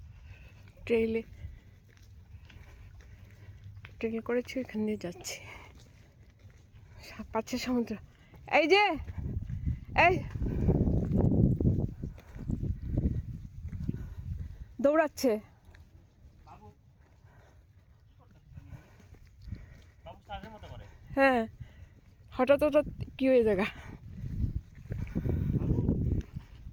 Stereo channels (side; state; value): both; identical; correlation 1.00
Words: ট্রেল করেছি, এখান দিয়ে যাচ্ছি। পাচ্ছে সমুদ্র। এই যে এই দৌড়াচ্ছে। হ্যাঁ, হঠাৎ হঠাৎ কি হয়ে জায়গা।